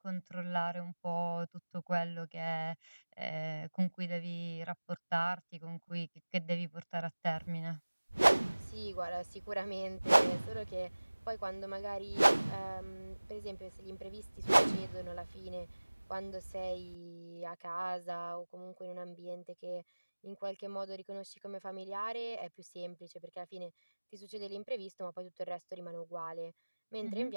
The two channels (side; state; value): both; inverted; correlation -1.00